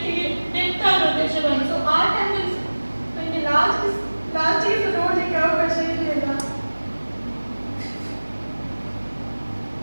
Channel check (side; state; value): both; inverted; correlation -1.00